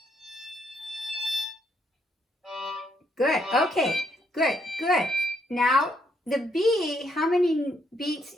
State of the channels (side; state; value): both; normal; correlation 0.73